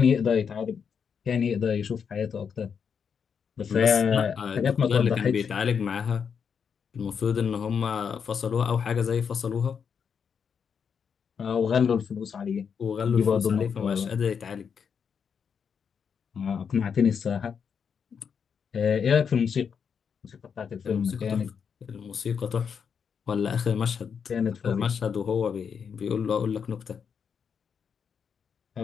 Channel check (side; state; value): right; quieter; 6.8 dB